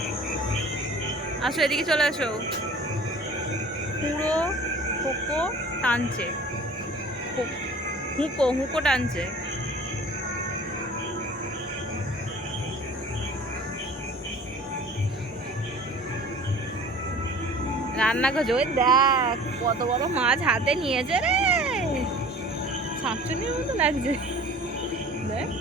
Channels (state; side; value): normal; both; correlation 0.45